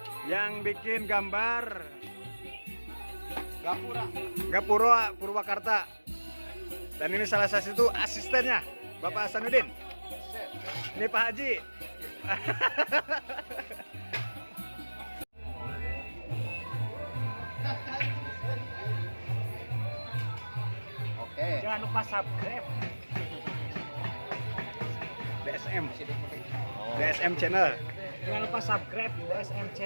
yang bikin gambar gapura Purwakarta. Dan ini salah satu asistennya Bapak Hasanuddin. Ini Pak Haji. Oke. Jangan lupa subscribe DSM channel. Jangan lupa subscribe DSM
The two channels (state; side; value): inverted; both; correlation -1.00